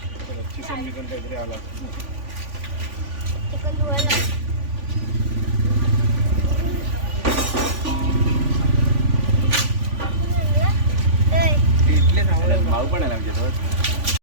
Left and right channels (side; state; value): left; late; 3.5 ms